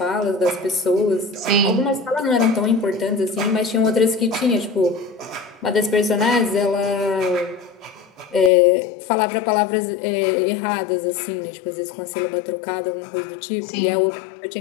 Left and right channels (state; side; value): drops out; right; at 8.5 s